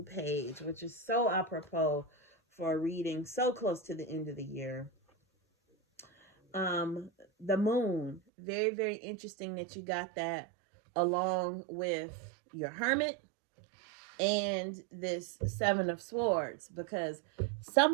page, which is so apropos for a reading so close to the end of the year. The Moon, very, very interesting that you got that along with your Hermit and this Seven of Swords, because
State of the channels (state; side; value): drops out; left; at 8.2 s